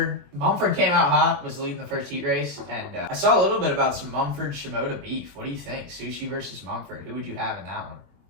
Mumford came out hot, was leading the first heat race. And I saw a little bit about some Mumford-Shimoda beef. What do you think? Sushi versus Mumford. Who would you have in that one?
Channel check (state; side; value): late; left; 22 ms